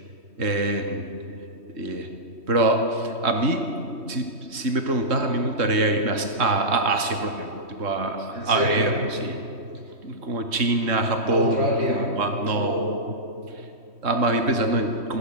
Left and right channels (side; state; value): left; late; 3.1 ms